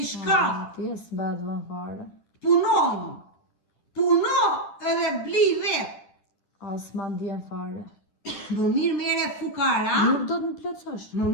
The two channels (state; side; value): late; right; 10 ms